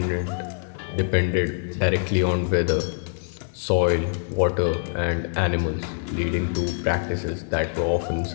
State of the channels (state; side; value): silent; right; digital silence